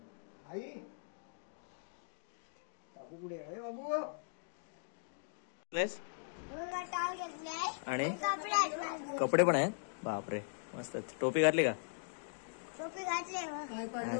आई बाबू कुठे आहे? बाबू आणि कपडे पण आहेत. बापरे, मस्त. टोपी घातली का? टोपी घातली.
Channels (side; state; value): right; silent; digital silence